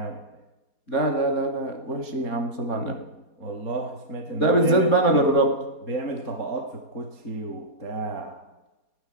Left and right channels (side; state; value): right; late; 4.3 ms